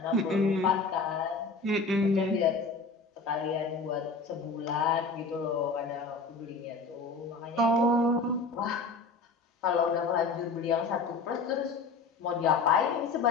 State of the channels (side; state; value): right; quieter; 4.0 dB